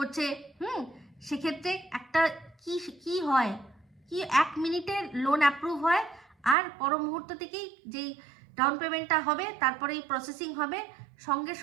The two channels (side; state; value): left; drops out; at 6.6 s